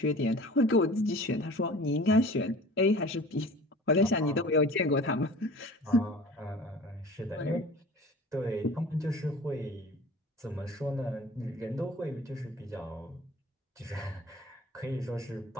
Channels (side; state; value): both; normal; correlation 0.42